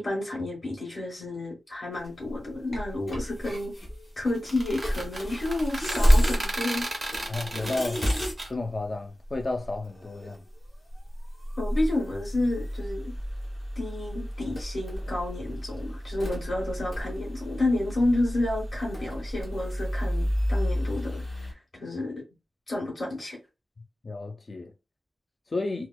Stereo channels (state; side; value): normal; both; correlation 0.96